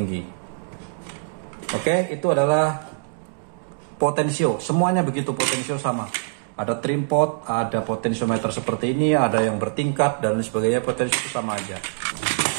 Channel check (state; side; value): silent; left; digital silence